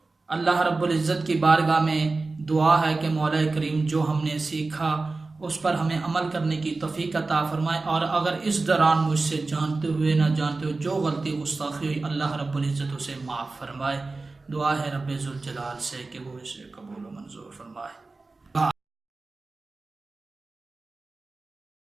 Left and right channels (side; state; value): left; quieter; 3.6 dB